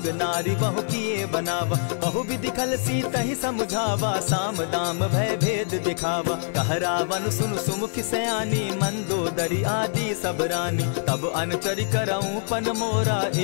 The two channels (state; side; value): silent; right; 62 dB below the other